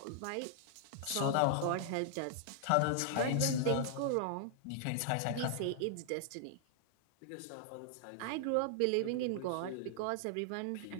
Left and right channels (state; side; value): different; both; correlation -0.01